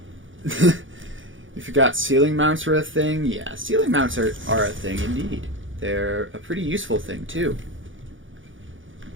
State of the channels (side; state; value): left; late; 0.57 ms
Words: You forgot ceiling mounts were a thing? Yeah, ceiling mounts are a thing indeed. They're a pretty useful thing too.